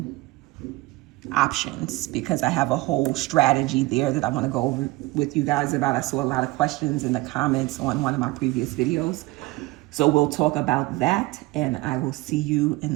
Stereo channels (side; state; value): left; quieter; 21.0 dB